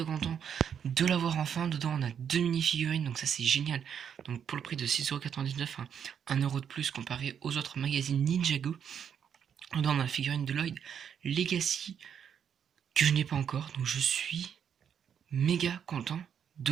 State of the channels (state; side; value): quieter; left; 8.1 dB